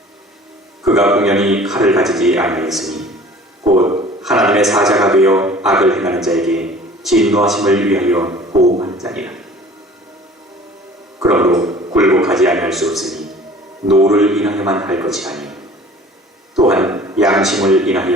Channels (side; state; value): both; normal; correlation 0.47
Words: 그가 공연히 칼을 가지지 아니하였으니 곧 하나님의 사자가 되어 악을 행하는 자에게 진노하심을 위하여 보호하는 자니라. 그러므로 굴복하지 아니할 수 없으니 노를 인하여만 할 것이 아니 또한 양심을